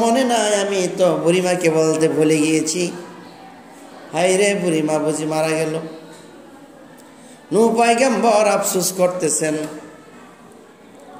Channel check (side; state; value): both; identical; correlation 1.00